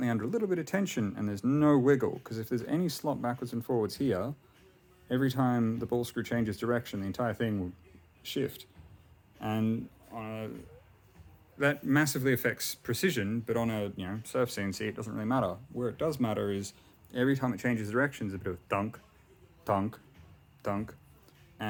under a little bit of tension and there's no wiggle, because if there's any slop backwards and forwards here, every time the ball screw changes direction the entire thing will shift. And that massively affects precision, but on a surf CNC it doesn't really matter. Where it does matter is every time it changes direction there's a bit of thunk, thunk, thunk,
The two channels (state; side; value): identical; both; correlation 1.00